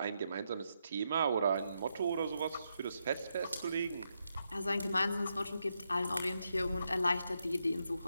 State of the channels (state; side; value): inverted; both; correlation -0.82